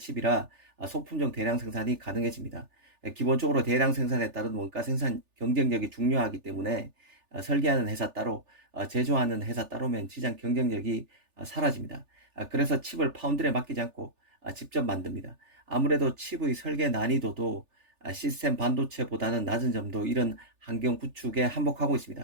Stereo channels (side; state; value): left; late; 3.4 ms